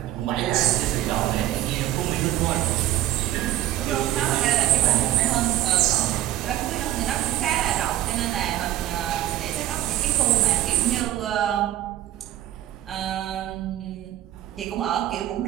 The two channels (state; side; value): quieter; left; 13.6 dB